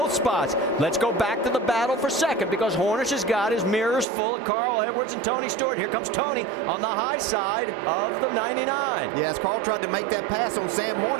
spots. Let's go back to the battle for 2nd because Hornish has got his mirrors full of Carl Edwards and Tony Stewart. Here comes Tony on the high side of the 99. Yeah, as Carl tried to make that pass on Sam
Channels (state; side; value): drops out; left; at 4.0 s